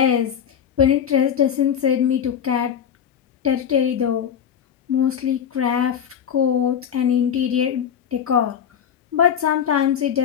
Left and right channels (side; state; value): right; quieter; 8.5 dB